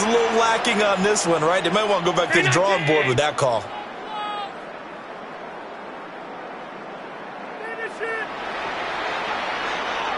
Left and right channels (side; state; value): both; identical; correlation 1.00